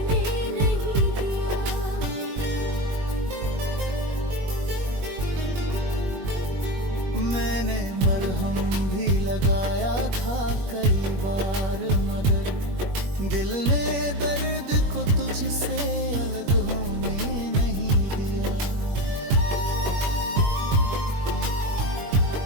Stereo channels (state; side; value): late; left; 21 ms